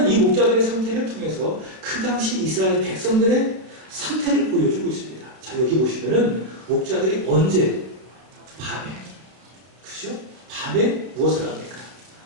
이 목자들의 상태를 통해서 그 당시 이스라엘 백성들의 상태를 보여주고 있습니다. 자, 여기 보시면은 목자들이 언제? 밤에. 그죠? 밤에 무엇을 합니까?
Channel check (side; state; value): left; late; 32 ms